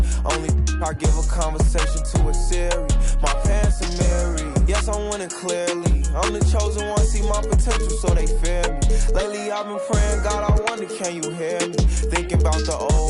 Only I give a conversation to a Siri. My pants are married. Yes, I'm winning clearly. I'm the chosen one, see my potential, so they fear me. Lately I've been praying, God, I wonder, can you hear me? Thinking about the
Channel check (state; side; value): identical; both; correlation 1.00